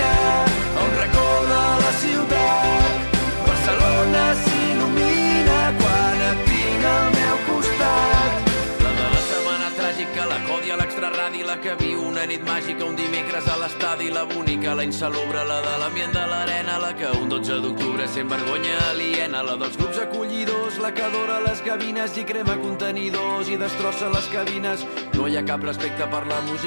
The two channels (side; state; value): both; inverted; correlation -1.00